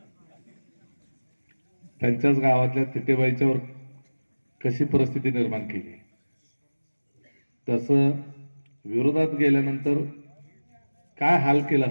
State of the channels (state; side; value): inverted; both; correlation -1.00